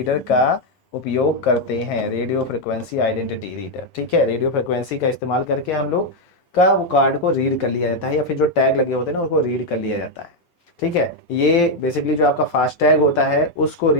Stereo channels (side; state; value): both; normal; correlation 0.02